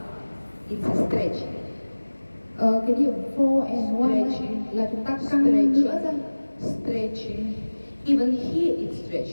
it's a stretching. Cái điểm 4 and 1 Stretching. là chúng ta căng nữa ra. Stretching. Even here it's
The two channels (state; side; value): inverted; both; correlation -1.00